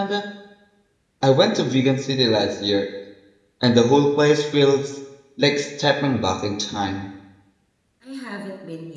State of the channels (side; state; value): both; identical; correlation 1.00